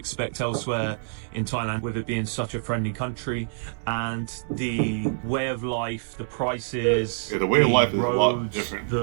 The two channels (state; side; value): silent; left; digital silence